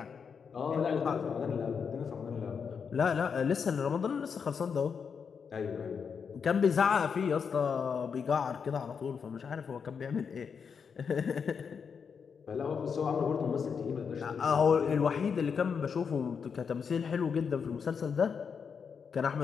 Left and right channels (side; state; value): right; quieter; 6.3 dB